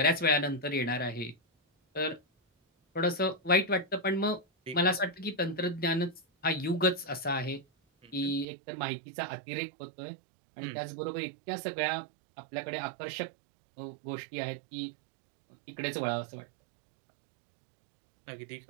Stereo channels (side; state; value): left; drops out; at 8.5 s